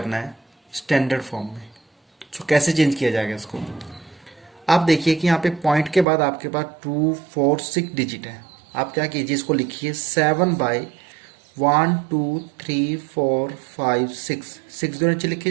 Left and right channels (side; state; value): left; drops out; at 6.1 s